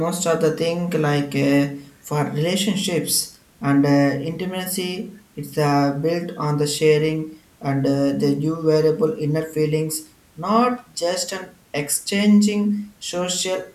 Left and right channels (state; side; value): identical; both; correlation 1.00